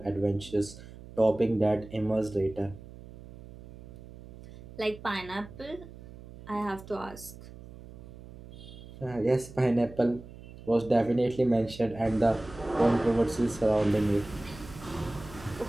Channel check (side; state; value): right; noise; hum, 17 dB below the sound